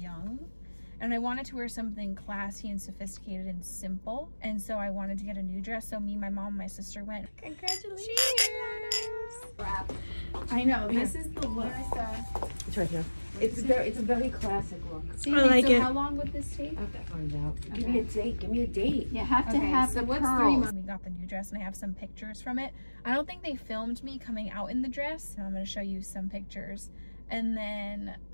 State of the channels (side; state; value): both; inverted; correlation -1.00